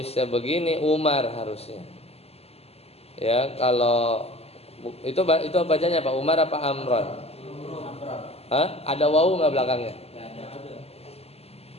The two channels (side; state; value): right; late; 0.29 ms